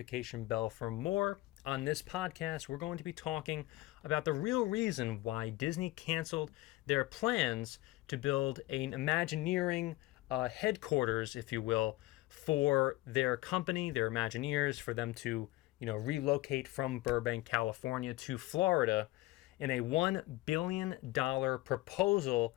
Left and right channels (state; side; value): quieter; right; 18.4 dB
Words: bell for more. On this podcast, we're going to be talking about the real reason why Disney canceled their plans to build an Imagineering headquarters, if you will, for their company, their Imagineers, for them to, relocate from Burbank, California to Florida in a $1 billion proposal